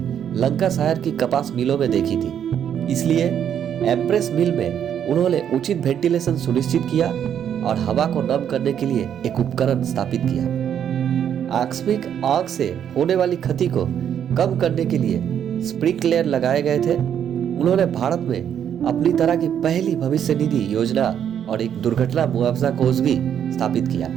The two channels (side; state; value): left; quieter; 9.1 dB